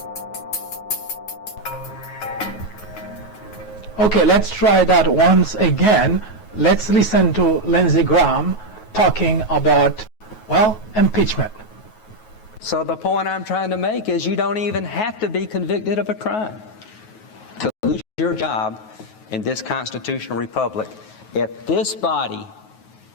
Okay, let's try that once again. Let's listen to Lindsey Graham talking about, well, impeachment. So the point I'm trying to make is you don't even have to be convicted of a crime to lose your job in this constitutional republic. If this body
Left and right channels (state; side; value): late; right; 9.3 ms